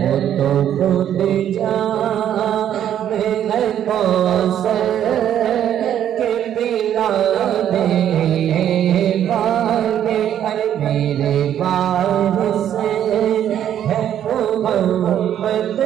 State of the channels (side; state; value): left; quieter; 10.3 dB